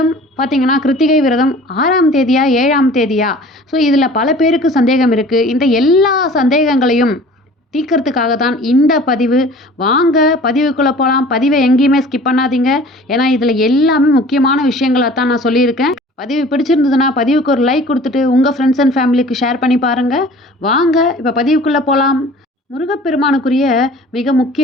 பார்த்திங்கன்னா கிருத்திகை விரதம் 6ஆம் தேதியா 7ஆம் தேதியா? ஸோ இதில் பல பேருக்கு சந்தேகம் இருக்குது. இந்த எல்லா சந்தேகங்களையும் தீர்க்கறதுக்காக தான் இந்த பதிவு. வாங்க பதிவுக்குள்ளே போகலாம். பதிவை எங்கேயுமே ஸ்கிப் பண்ணாதீங்க. ஏன்னா இதில் எல்லாமே முக்கியமான விஷயங்களை தான் நான் சொல்லியிருக்கேன். பதிவு பிடிச்சிருந்ததுன்னா பதிவுக்கு ஒரு லைக் கொடுத்துட்டு உங்கள் ஃப்ரெண்ட்ஸ் அண்ட் ஃபேமிலிக்கு ஷேர் பண்ணி பாருங்கள். வாங்க இப்போ பதிவுக்குள்ளே போகலாம். முருகப்பெருமானுக்குரிய மிக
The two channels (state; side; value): normal; both; correlation 0.46